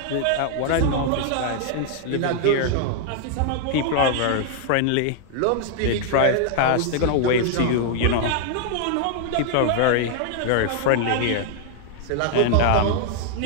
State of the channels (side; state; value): both; different; correlation 0.00